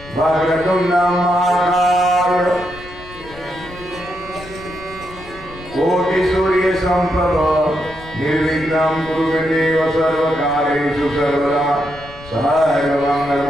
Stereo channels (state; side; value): noise; left; rumble, 19 dB below the sound